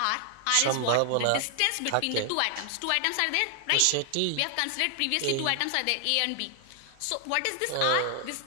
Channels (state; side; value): different; both; correlation 0.00